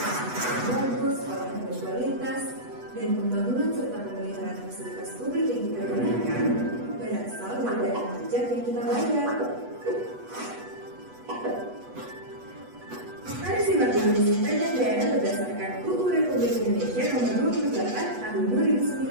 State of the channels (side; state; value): left; late; 8.1 ms